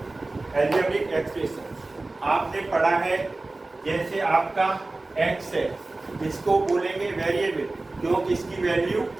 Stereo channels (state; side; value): quieter; left; 3.1 dB